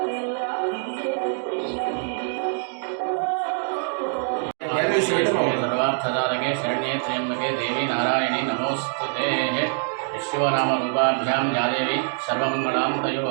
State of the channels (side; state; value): left; silent; 62 dB below the other